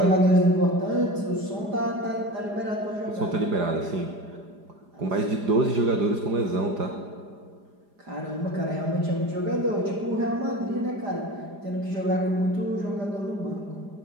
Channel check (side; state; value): left; late; 4.9 ms